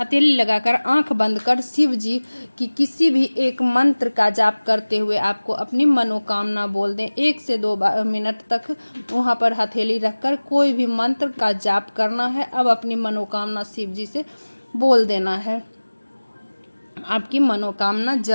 लगाकर आंख बंद कर शिव जी की किसी भी एक मंत्र का जाप करते हुए आपको अपनी मनोकामना बोल दें। 1 से 2 मिनट तक वहाँ पर हथेली रखकर कोई भी मंत्र का जाप करना है। अब अपनी मनोकामना शिव जी से बोल देना है। आपकी मनोकामना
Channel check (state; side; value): inverted; both; correlation -1.00